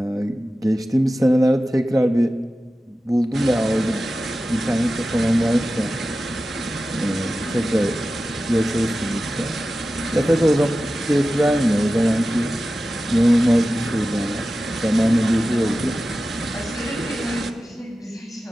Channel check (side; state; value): both; normal; correlation 0.94